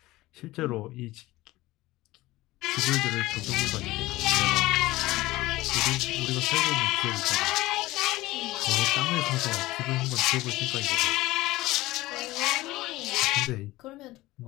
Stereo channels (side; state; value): right; quieter; 18.5 dB